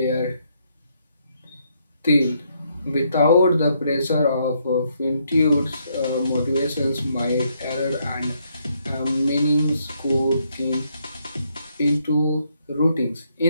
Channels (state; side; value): inverted; both; correlation -0.74